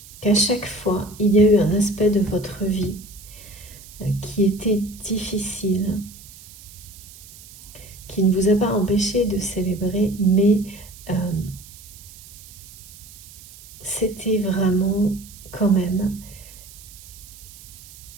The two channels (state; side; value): noise; right; hiss, 19 dB below the sound